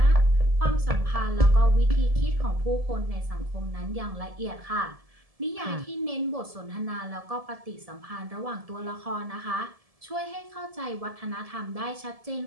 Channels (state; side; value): late; left; 1.7 ms